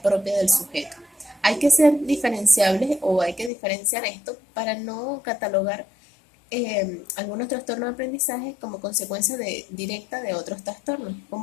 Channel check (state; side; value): drops out; right; at 3.5 s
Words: del sujeto. Hay que ser diferenciables o hay que diferenciar esto para no catalogar algunos trastornos de aprendizaje como consecuencia directa de otros trastornos,